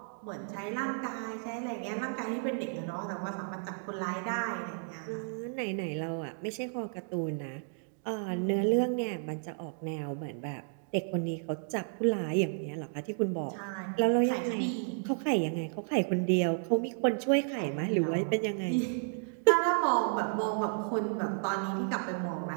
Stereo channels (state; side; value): silent; left; 56 dB below the other